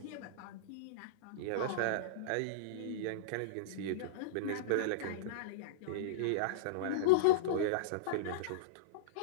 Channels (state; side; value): different; both; correlation -0.03